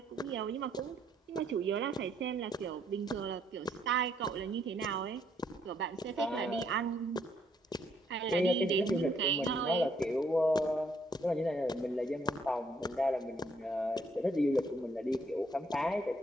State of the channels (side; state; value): both; normal; correlation 0.69